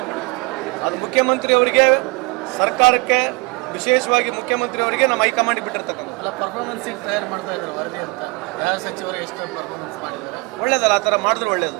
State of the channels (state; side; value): quieter; left; 27.2 dB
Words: ಅದು ಮುಖ್ಯಮಂತ್ರಿ ಅವರಿಗೆ, ಸರ್ಕಾರಕ್ಕೆ, ವಿಶೇಷವಾಗಿ ಮುಖ್ಯಮಂತ್ರಿ ಅವರಿಗೆ ನಮ್ಮ ಹೈಕಮಾಂಡ್ ಬಿಟ್ಟಿರ್ತಕ್ಕಂಥ ಪರ್ಫಾರ್ಮೆನ್ಸ್ ತಯಾರು ಮಾಡ್ತಾ ಇದ್ರು ವರದಿ ಅಂತ. ಯಾವ ಸಚಿವರು ಎಷ್ಟು ಪರ್ಫಾರ್ಮೆನ್ಸ್ ಮಾಡಿದ್ದಾರೆ? ಒಳ್ಳೇದಲ್ಲ, ಆ ಥರ ಮಾಡಿದ್ರೆ ಒಳ್ಳೇದು.